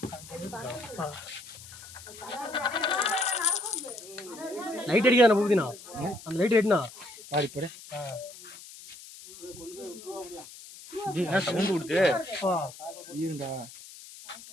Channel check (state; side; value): noise; left; hiss, 16 dB below the sound